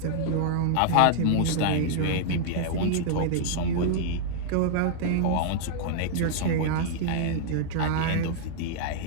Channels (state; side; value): different; both; correlation -0.01